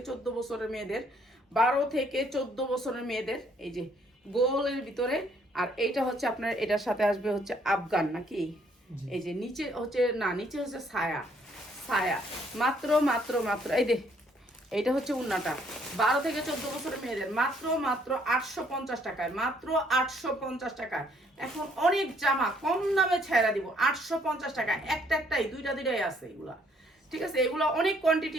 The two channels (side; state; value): both; normal; correlation 0.66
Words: 14 বছরের মেয়েদের, 12 থেকে 14 বছরের মেয়েদের। এই যে গোলের ভিতরে। আর এইটা হচ্ছে আপনার, এটার সাথে আসবে হচ্ছে আফগান নাকি। এই যে নিচে হচ্ছে, না নিচে হচ্ছে ছায়া, ছায়া। মাত্র মাত্র মাত্র এই দে, এইটা হচ্ছে উন্নাটা 12 থেকে 14 বছরের মেয়েদের, মাত্র মাত্র 850 টাকায়, মাত্র 850 টাকায়। এখন অনেক জামা কম দামে ছেড়া দিব 850 টাকায়। একটা একটাই, দুইটাই আছে এগুলা, ঠিক আছে। এগুলো অনেক